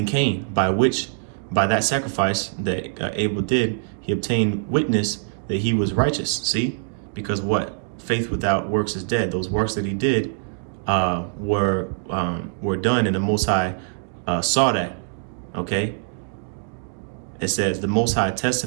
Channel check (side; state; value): left; silent; digital silence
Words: Cain, by that sacrifice that Abel did, he obtained witness that he was righteous. See, because what? Faith without works is dead. Those works that he did were done, and the Most High saw that. Okay. It says the Most High